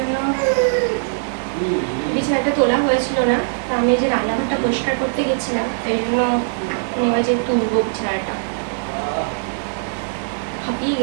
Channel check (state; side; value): silent; left; digital silence